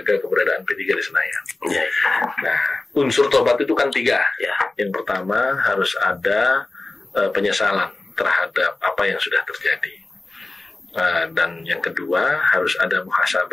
keberadaan P3 di Senayan. Nah, unsur tobat itu kan 3. Yang pertama harus ada penyesalan terhadap apa yang sudah terjadi. Dan yang kedua harus ada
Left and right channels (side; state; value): right; quieter; 3.1 dB